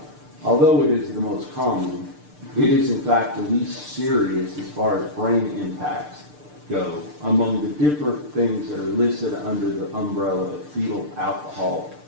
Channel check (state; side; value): late; left; 6.7 ms